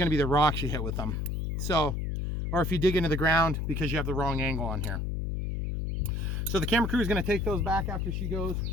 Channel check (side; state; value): left; noise; hum, 1 dB below the sound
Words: to be the rocks you hit with them. So, or if you dig into the ground because you have the wrong angle on here. So the camera crew is going to take those back after she goes